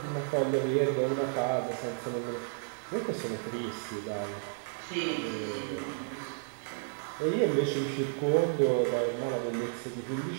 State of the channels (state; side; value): silent; left; 56 dB below the other